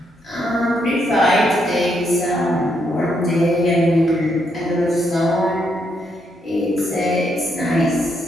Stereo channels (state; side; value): normal; both; correlation 0.77